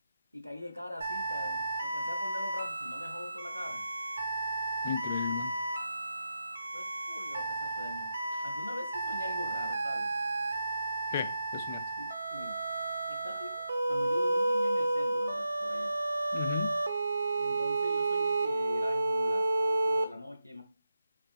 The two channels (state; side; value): inverted; both; correlation -0.86